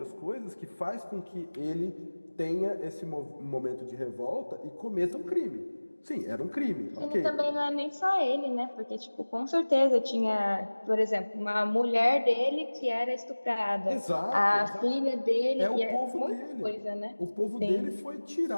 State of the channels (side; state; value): both; inverted; correlation -1.00